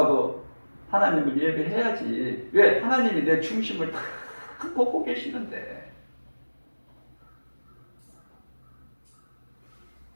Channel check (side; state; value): both; inverted; correlation -1.00